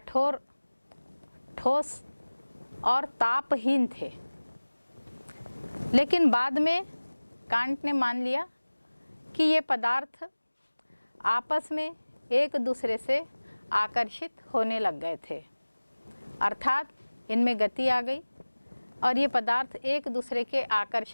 ठोस और तापहीन थे। लेकिन बाद में कांट ने मान लिया कि ये पदार्थ आपस में एक दूसरे से आकर्षित होने लग गए थे, अर्थात इनमें गति आ गई और ये पदार्थ एक दूसरे के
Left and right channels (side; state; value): both; inverted; correlation -1.00